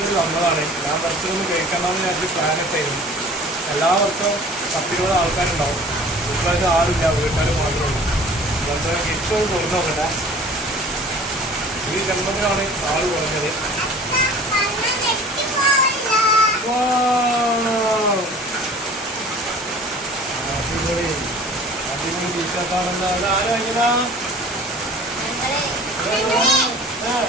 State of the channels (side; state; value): both; normal; correlation 0.45